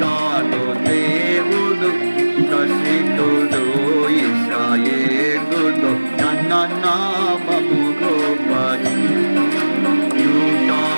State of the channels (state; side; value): inverted; both; correlation -1.00